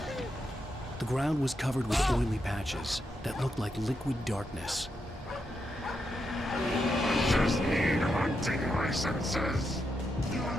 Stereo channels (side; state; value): both; normal; correlation 0.83